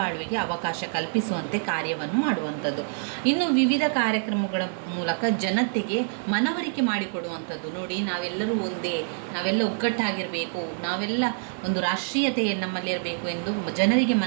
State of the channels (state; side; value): silent; left; digital silence